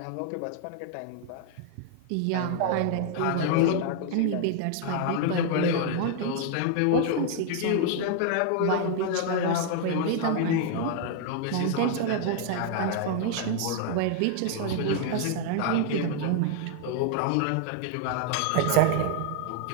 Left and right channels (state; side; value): different; both; correlation 0.00